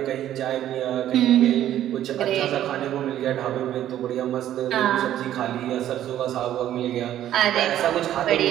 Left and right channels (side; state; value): left; quieter; 12.0 dB